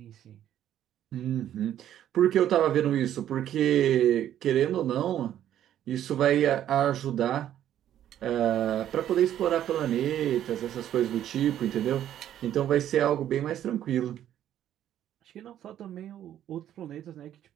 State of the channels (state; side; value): quieter; left; 11.2 dB